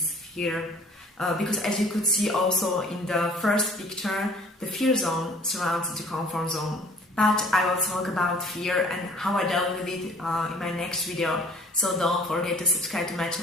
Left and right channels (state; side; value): normal; both; correlation 0.52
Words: fear. Because as you could see also in the first picture, the fear zone surrounds the comfort zone. But I will talk about fear and how I dealt with it in my next video. So don't forget to subscribe to my